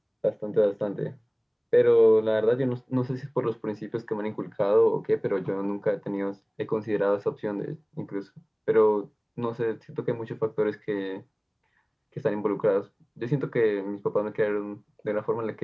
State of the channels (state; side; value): identical; both; correlation 1.00